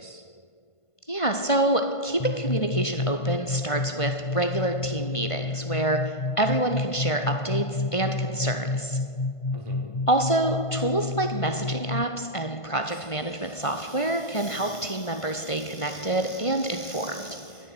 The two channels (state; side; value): late; right; 1.5 ms